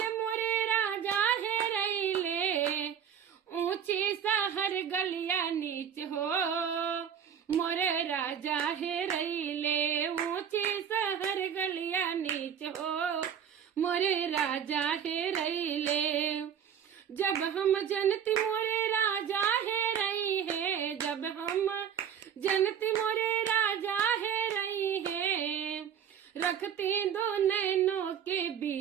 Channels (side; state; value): left; quieter; 8.4 dB